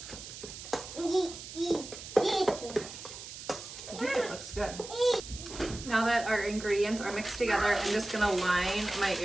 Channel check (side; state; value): right; noise; hiss, 12 dB below the sound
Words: I think it looks good. Now that our ingredients are mixed together, I'm just gonna line my